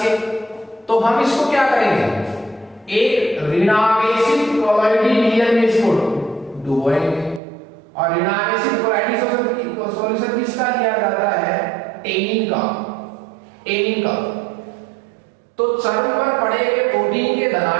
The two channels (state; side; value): drops out; left; at 7.4 s